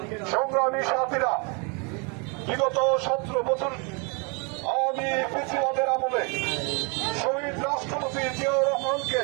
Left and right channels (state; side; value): quieter; left; 33.3 dB